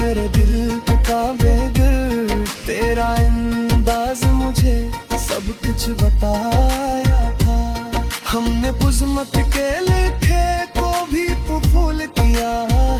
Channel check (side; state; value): both; identical; correlation 1.00